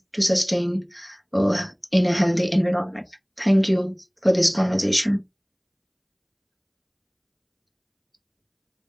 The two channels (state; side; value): identical; both; correlation 1.00